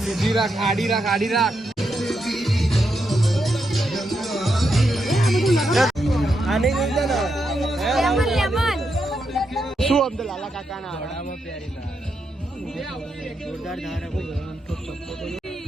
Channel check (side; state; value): both; normal; correlation 0.83